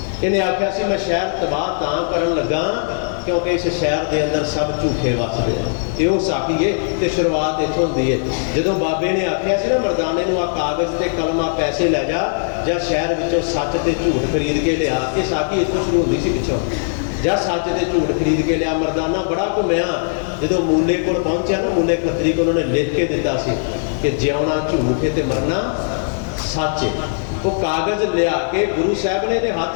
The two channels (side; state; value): right; silent; digital silence